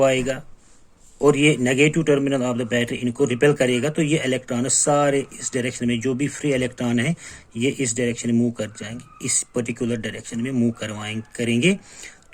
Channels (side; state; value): both; identical; correlation 1.00